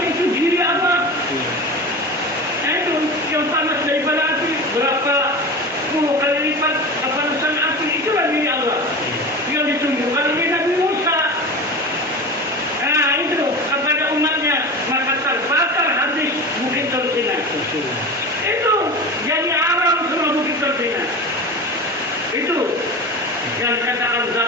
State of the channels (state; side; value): normal; both; correlation 0.29